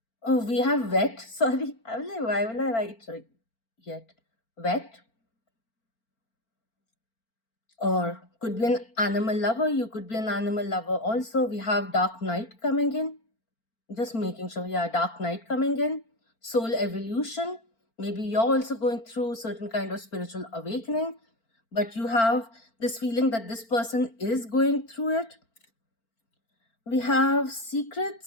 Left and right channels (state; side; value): late; right; 4.4 ms